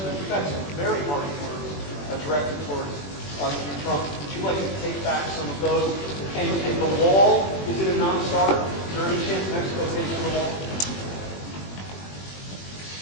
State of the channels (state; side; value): late; right; 21 ms